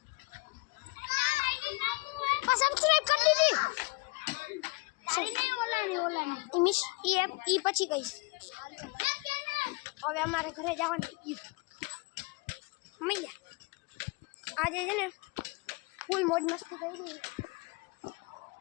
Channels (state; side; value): quieter; right; 27.1 dB